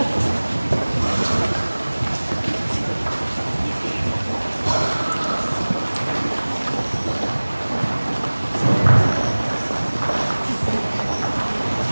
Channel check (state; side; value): inverted; both; correlation -1.00